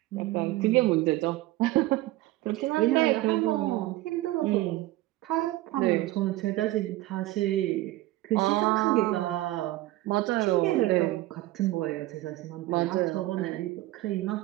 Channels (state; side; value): quieter; left; 17.2 dB